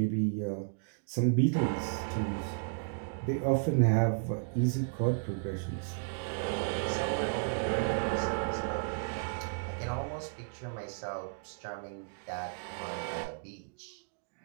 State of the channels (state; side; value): silent; left; digital silence